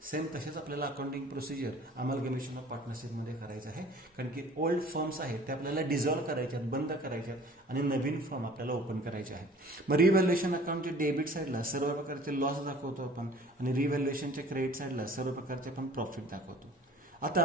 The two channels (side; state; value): both; normal; correlation 0.49